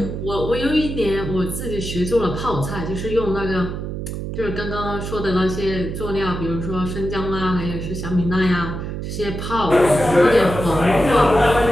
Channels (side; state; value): right; noise; hum, 5 dB below the sound